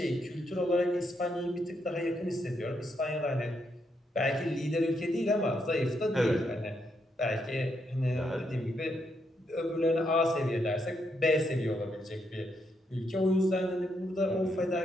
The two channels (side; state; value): both; normal; correlation 0.78